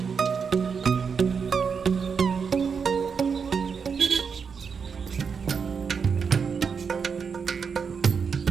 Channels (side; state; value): left; quieter; 6.0 dB